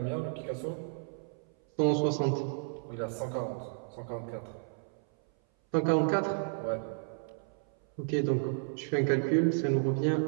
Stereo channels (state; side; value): silent; left; 56 dB below the other